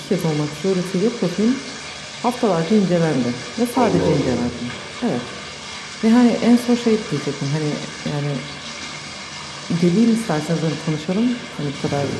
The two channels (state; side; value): identical; both; correlation 1.00